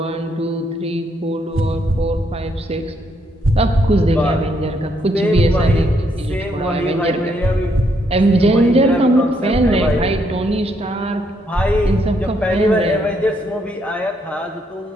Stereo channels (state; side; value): normal; both; correlation 0.74